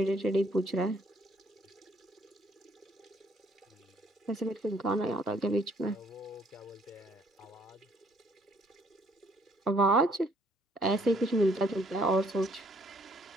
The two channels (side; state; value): both; normal; correlation 0.65